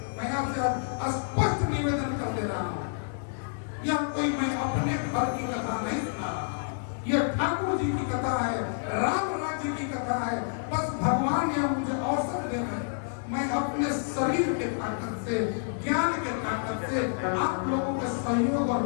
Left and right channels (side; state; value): right; silent; digital silence